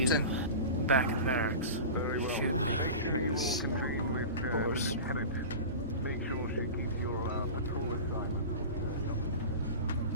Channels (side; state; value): both; inverted; correlation -0.31